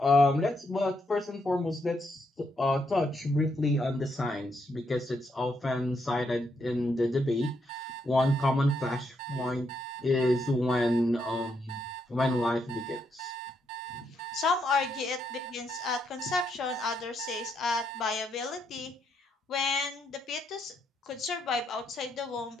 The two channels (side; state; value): both; normal; correlation 0.78